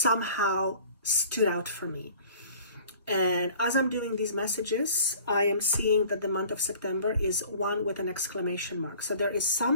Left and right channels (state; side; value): inverted; both; correlation -0.48